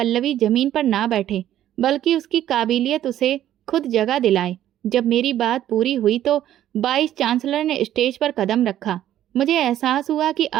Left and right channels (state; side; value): quieter; left; 12.1 dB